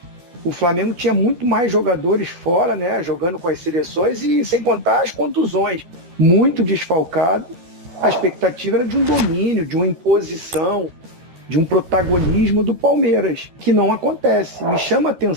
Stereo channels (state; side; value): late; left; 12 ms